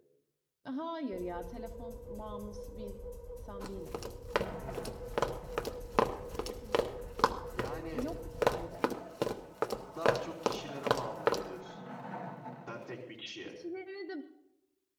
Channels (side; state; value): both; identical; correlation 1.00